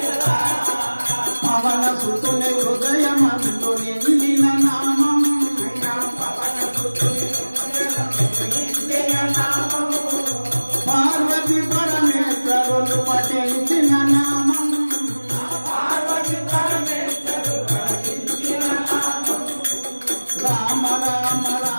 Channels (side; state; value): both; inverted; correlation -1.00